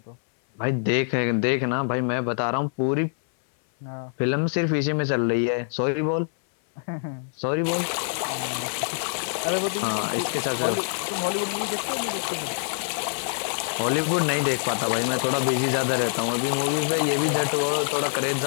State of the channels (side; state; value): right; silent; 62 dB below the other